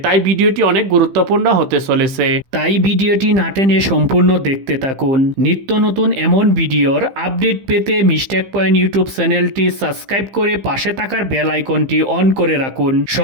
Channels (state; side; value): late; left; 15 ms